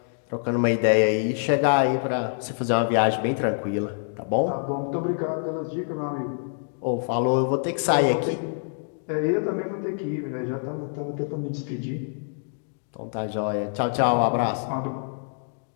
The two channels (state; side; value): silent; right; digital silence